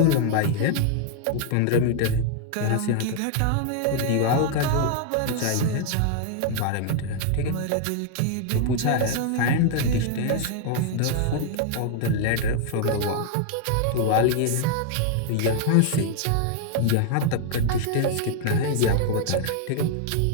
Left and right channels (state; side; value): different; both; correlation 0.00